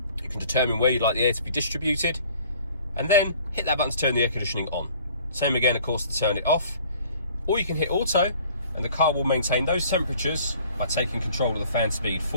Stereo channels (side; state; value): both; inverted; correlation -0.53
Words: You can determine where you'd like the air to be distributed, and then hit that button to turn the air conditioning on. Same again, of course, to turn it off. Or you can hit auto, and the car will maintain those temperatures by taking control of the fan speed